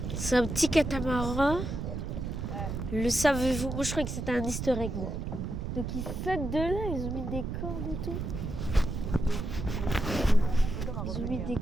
C'est un petit catamaran. Le savez-vous? Moi je croyais que c'était un easter egg. Moi. Donc ils sautent de là, ils ont mis des cordes et tout. Ils ont mis des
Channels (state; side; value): noise; right; rumble, 4 dB below the sound